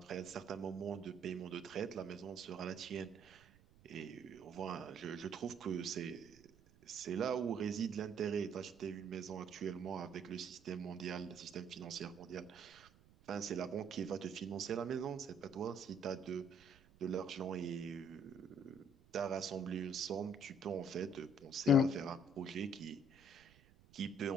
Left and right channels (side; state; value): right; noise; rumble, 25 dB below the sound